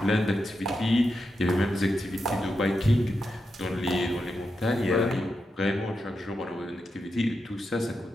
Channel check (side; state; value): both; normal; correlation 0.87